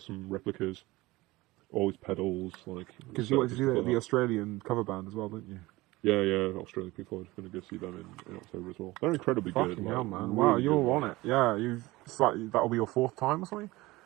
replicas, all his pedals, like Because you setup wanted to and see stuff like the that. Australian cover band as well, didn't you? Yeah, Australian Pink Floyd. Going to go see them in October as well. They're incredibly good, Fucking hell, like man! Wow, really good. you're on Like, it. Yeah, you've. It's like that'll be your fourth time or something.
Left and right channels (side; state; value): left; quieter; 20.2 dB